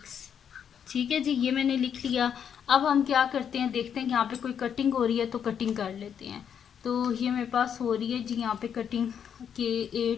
ठीक है जी, ये मैंने लिख लिया। अब हम क्या करते हैं, देखते हैं कि यहाँ पे कोई कटिंग हो रही है तो कटिंग कर लेते हैं। तो ये मेरे पास हो रही है जी यहाँ पे कटिंग के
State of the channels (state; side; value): quieter; right; 8.1 dB